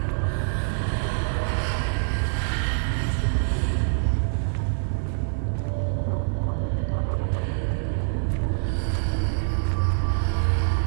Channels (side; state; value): left; silent; digital silence